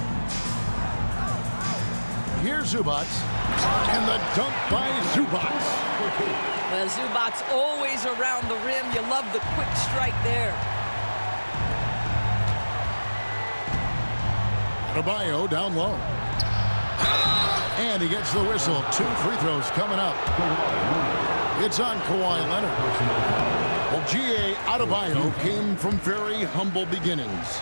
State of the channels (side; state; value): both; inverted; correlation -1.00